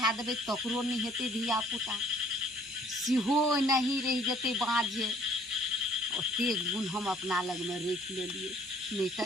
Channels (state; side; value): normal; both; correlation 0.57